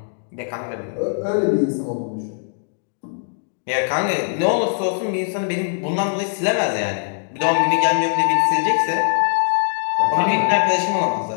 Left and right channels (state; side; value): silent; right; digital silence